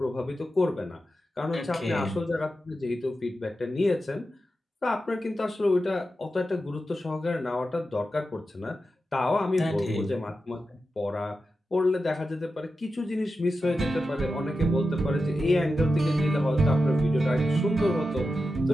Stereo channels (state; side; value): normal; both; correlation 0.91